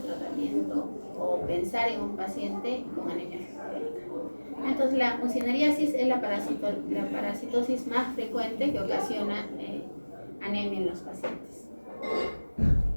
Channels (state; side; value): inverted; both; correlation -1.00